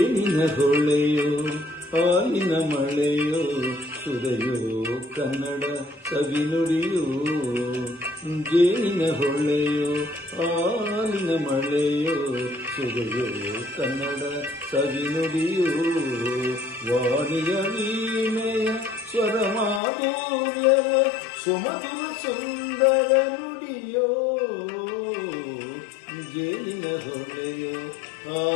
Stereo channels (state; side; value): drops out; right; at 19.8 s